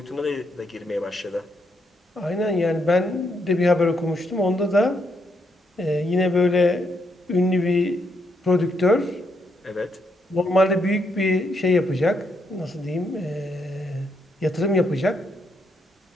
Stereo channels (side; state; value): both; normal; correlation 0.77